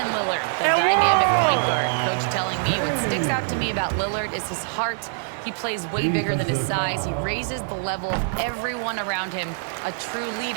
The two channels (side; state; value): left; silent; digital silence